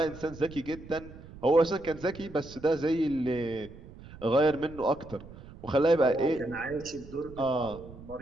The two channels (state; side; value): noise; right; rumble, 17 dB below the sound